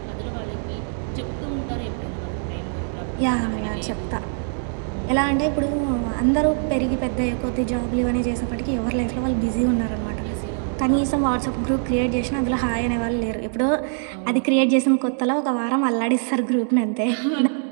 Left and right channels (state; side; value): silent; left; 63 dB below the other